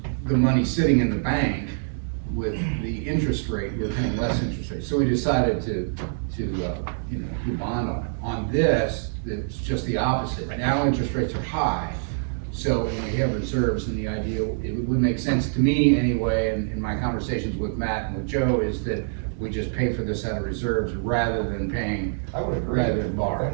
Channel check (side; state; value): left; silent; digital silence